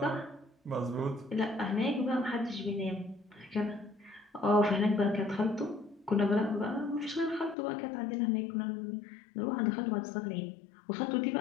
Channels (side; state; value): right; drops out; at 7.6 s